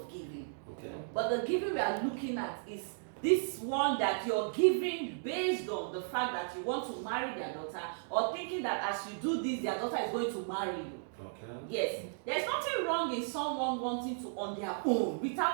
giving. Okay. But the giving we are looking at is this one that you're giving based on the fact that you want to marry their daughter, or thinking that as you do this, their daughter is going to marry you. Okay. Yes. There's nothing wrong in someone wanting to on their own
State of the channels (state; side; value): silent; left; digital silence